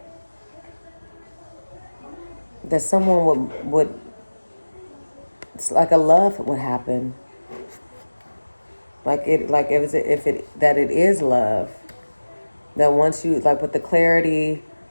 someone would it's like a love would happen, like if it that it is love, that once you, like with the clarity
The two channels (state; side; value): inverted; both; correlation -1.00